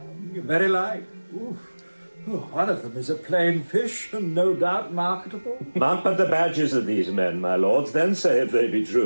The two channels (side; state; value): both; inverted; correlation -1.00